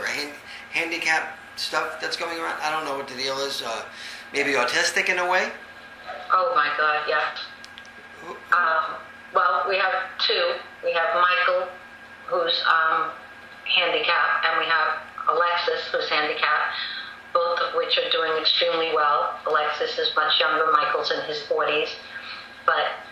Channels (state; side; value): identical; both; correlation 1.00